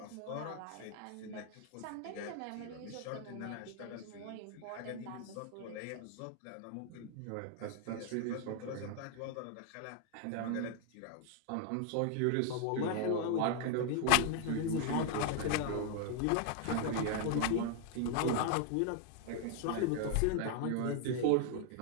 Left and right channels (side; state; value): both; different; correlation 0.00